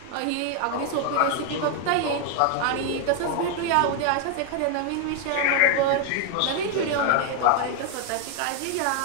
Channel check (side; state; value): both; different; correlation 0.00